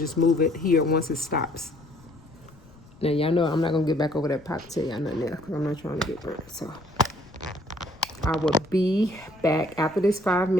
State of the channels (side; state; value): left; noise; rumble, 24 dB below the sound